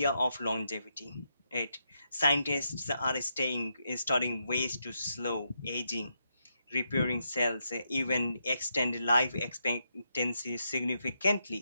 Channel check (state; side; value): inverted; both; correlation -0.82